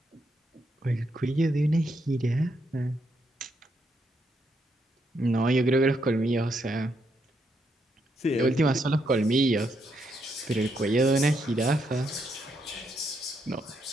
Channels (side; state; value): both; normal; correlation 0.78